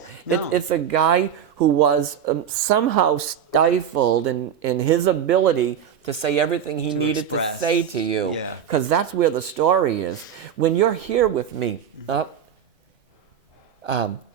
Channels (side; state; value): left; quieter; 8.7 dB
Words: No. It's a guy who was somehow stifled in his ability to say everything he needed express. to say to you. Yeah. Because that's where the story is. When you're here with me,